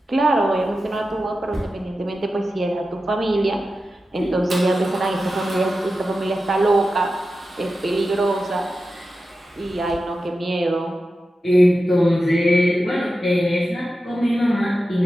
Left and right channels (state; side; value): normal; both; correlation 0.92